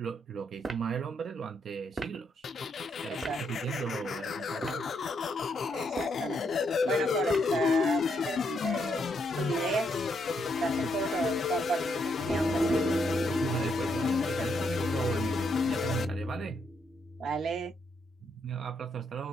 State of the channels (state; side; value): normal; both; correlation 0.76